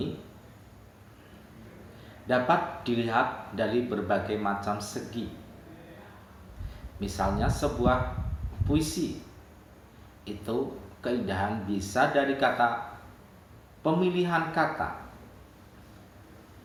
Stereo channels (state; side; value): identical; both; correlation 1.00